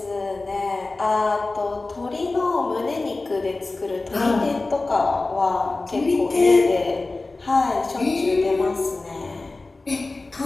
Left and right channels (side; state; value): right; quieter; 3.3 dB